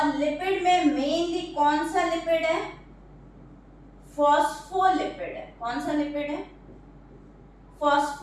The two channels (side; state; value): both; identical; correlation 1.00